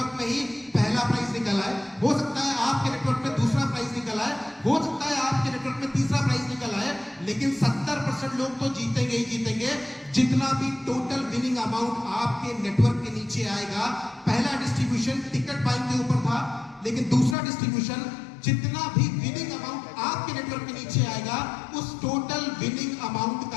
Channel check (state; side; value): drops out; right; at 17.4 s